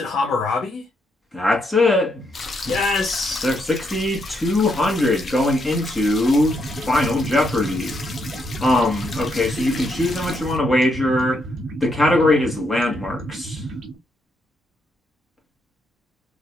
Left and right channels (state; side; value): normal; both; correlation 0.77